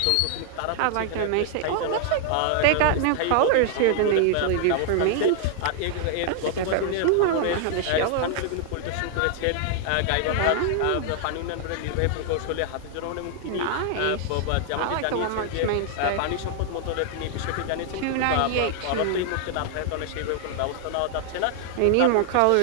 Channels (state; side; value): different; both; correlation 0.00